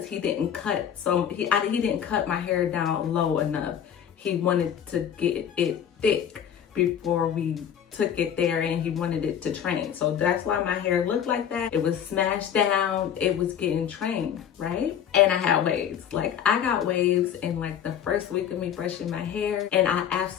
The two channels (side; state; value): right; quieter; 9.0 dB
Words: he didn't cut. So he didn't cut my hair down low enough. He wanted to get it thick before we took it there, and he wanted it to train. So that's why my hair looked like that. It was smashed down. It was getting trained, right? And I had waves. Like, I got waves in like the first week of me brushing my hair, and I